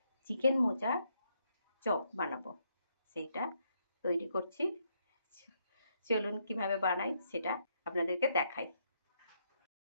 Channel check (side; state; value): both; inverted; correlation -0.76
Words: চিকেন মোচা চপ বানাবো, সেইটা তৈরি করছি। চলুন কিভাবে বানাই সেটা আপনাদেরকে দেখাই।